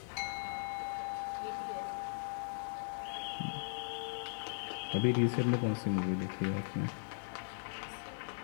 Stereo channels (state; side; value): silent; right; digital silence